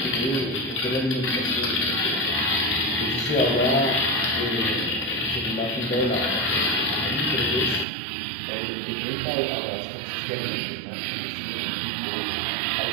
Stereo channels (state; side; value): drops out; left; at 7.9 s